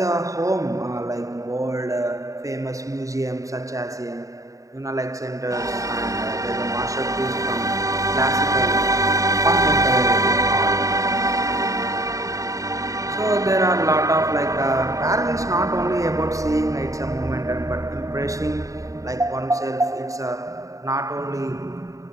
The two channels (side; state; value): left; late; 0.16 ms